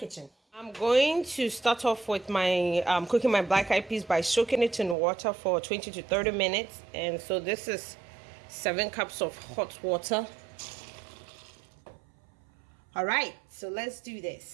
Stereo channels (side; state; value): left; drops out; at 5.0 s